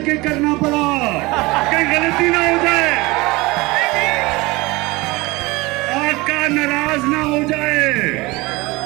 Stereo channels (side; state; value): left; quieter; 22.6 dB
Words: करना पड़ा, कहीं गलती ना हो जाए, आका नाराज ना हो जाए।